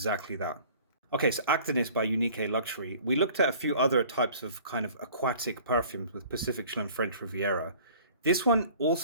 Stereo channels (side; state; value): both; inverted; correlation -0.49